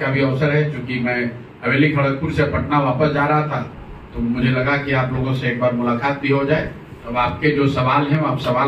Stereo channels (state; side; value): identical; both; correlation 1.00